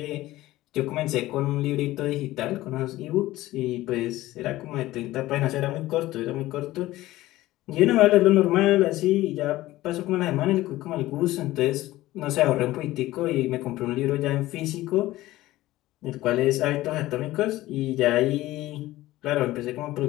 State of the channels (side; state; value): right; quieter; 16.7 dB